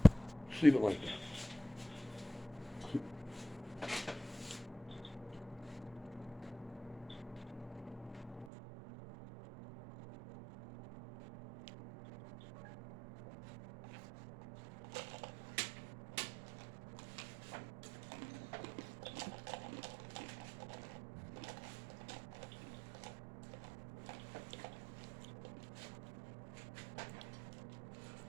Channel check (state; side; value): drops out; left; at 8.5 s